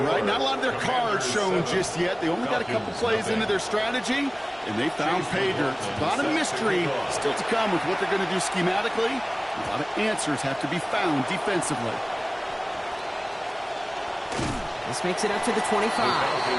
right? Not a lot of their cards shown just yet. They only got a couple plays into their strategy, and they found pay dirt. A lot of mystery still to come with what they're going to do schematically. A lot of answers have to be found defensively. This makes it up to the 25. The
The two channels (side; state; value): both; identical; correlation 1.00